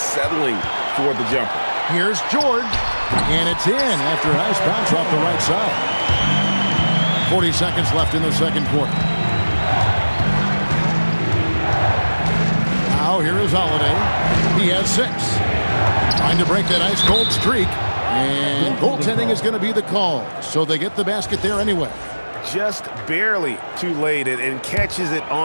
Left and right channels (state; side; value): inverted; both; correlation -1.00